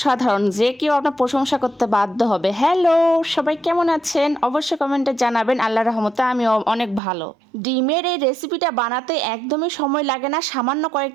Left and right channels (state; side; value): drops out; left; at 7.0 s